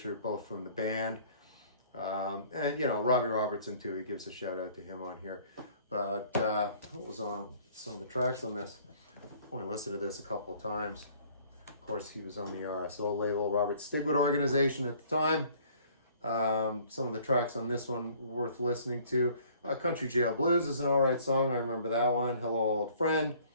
both from the band. And, you know, Robbie Robertson, too. He gives a shout out to him on here. But what was on some of the tracks on this? I only listened to this a couple of times. Of course, he was on the RSO label, Robert Stigwood organization at the time. Some of the tracks on this one worth listening to. Country Jail Blues is an alright song. I remember that one. Hello, Old Friend.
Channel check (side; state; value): both; inverted; correlation -0.56